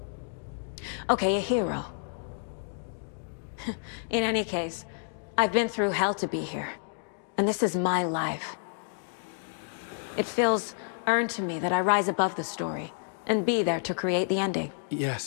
Okay, a hero. In any case, I've been through hell to be here. And this is my life. It feels earned to me that I rise above the story and be there to create the ending.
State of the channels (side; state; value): right; silent; digital silence